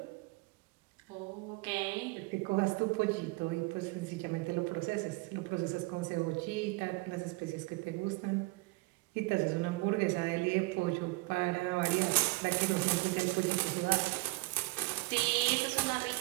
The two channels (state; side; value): quieter; left; 23.9 dB